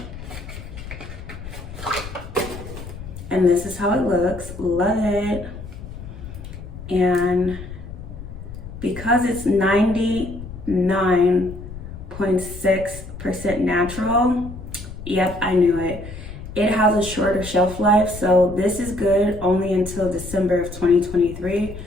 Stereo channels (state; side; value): noise; left; rumble, 12 dB below the sound